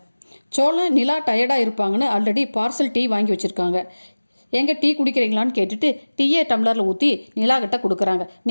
சோழன் நிலா டயர்டாக இருப்பாங்கன்னு ஆல்ரெடி பார்சல் டீ வாங்கி வச்சுருக்காங்க. எங்கே டீ குடிக்கிறீங்களான்னு கேட்டுட்டு டீயை டம்ளரில் ஊற்றி நிலா கிட்ட கொடுக்குறாங்க.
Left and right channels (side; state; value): both; inverted; correlation -1.00